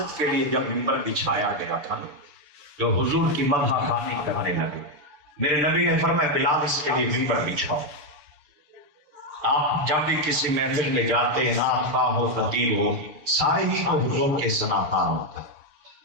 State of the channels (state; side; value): late; left; 6.7 ms